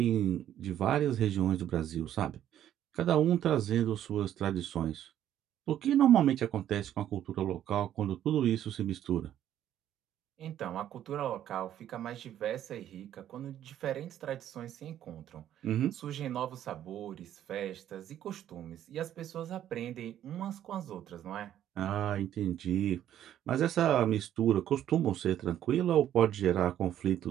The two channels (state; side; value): quieter; left; 11.2 dB